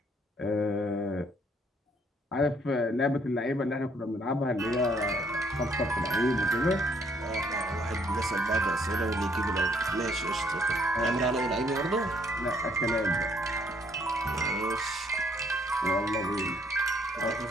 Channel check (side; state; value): both; normal; correlation 0.66